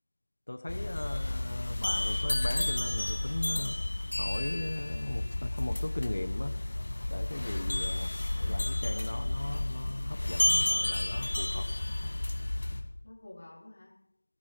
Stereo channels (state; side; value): inverted; both; correlation -1.00